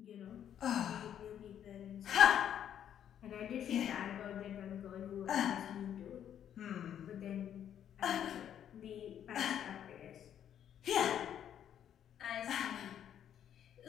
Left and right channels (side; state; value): right; quieter; 9.8 dB